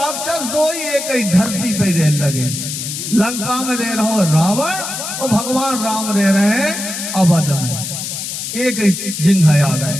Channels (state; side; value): noise; left; hiss, 5 dB below the sound